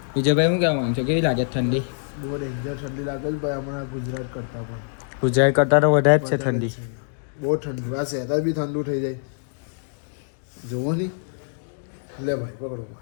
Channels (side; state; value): right; silent; digital silence